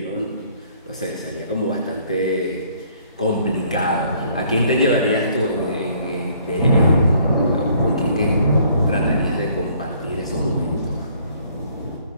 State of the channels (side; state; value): both; inverted; correlation -0.62